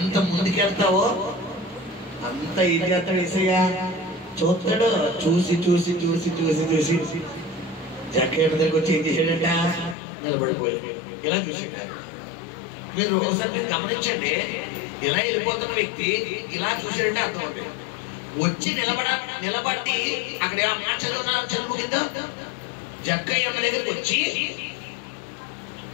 ముందుకెళ్తావో అంత ఏం చేస్తాడు యేసయ్య చూస్తాడు. చూసి చూసి చూసి చూసి చూసి జక్కయ్య దగ్గరికి వచ్చి ఏం చేశాడంట, నిలబడిపోయాడు. ఇలా చూసాడు. మీరు ఒకసారి మీరు గమనించండి, ఇలా వెళ్ళిపోతున్న వ్యక్తి ఇలా చూసాడంటే అర్థం అంటే వచ్చి నిలబడి అక్కడ ఆ మాట చదువు కింద జక్కయ్య దగ్గరికి వచ్చి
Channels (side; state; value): right; drops out; at 10.0 s